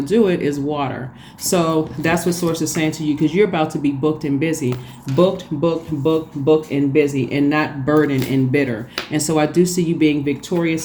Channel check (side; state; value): both; identical; correlation 1.00